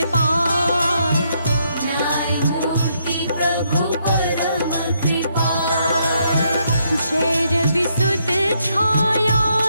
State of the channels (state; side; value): inverted; both; correlation -0.75